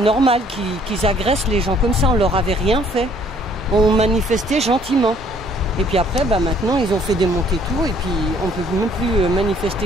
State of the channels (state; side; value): normal; both; correlation 0.61